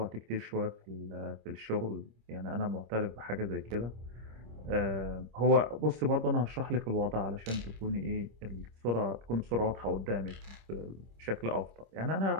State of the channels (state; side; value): late; left; 26 ms